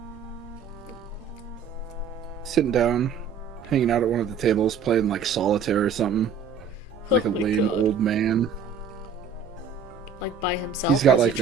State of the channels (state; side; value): quieter; left; 6.1 dB